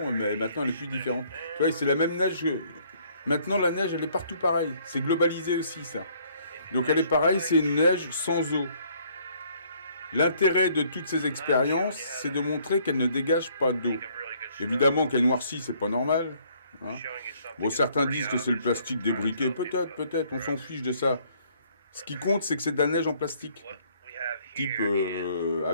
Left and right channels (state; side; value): inverted; both; correlation -0.63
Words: mais maintenant, elle est plus différente. Tu vois, c'est la même neige. Maintenant, la neige, elle est partout pareille. C'est globalisé aussi, ça. Donc, elle est pareille, c'est une neige sans eau. L'intérêt de toutes ces expériences, c'est de montrer qu'elle ne dégage pas d'eau. Évidemment qu'elle noircit, c'est pas normal. Hein. Bon, certains disent que c'est le plastique débriqué. Peut-être, on s'en fiche de ça. Ce qui compte, c'est que c'est de la neige en plastique. Type